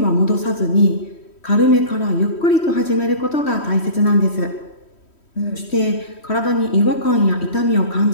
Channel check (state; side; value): late; right; 3.1 ms